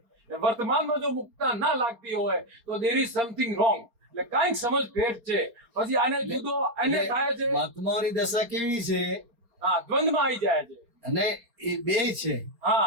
વર્તમાનમાં જો મુક્તતા ના લાગતી હોય તો દેર ઇઝ સમથિંગ રોંગ. એટલે કાંઈક સમજ ફેર છે. પછી આને જુદો એને થાય છે મહાત્માઓની દશા કેવી છે? હા દ્વંદમાં આવી જાય છે. અને એ બે છે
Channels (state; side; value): late; left; 4.2 ms